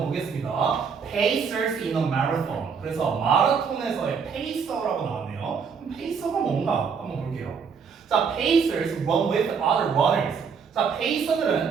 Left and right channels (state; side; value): quieter; left; 6.1 dB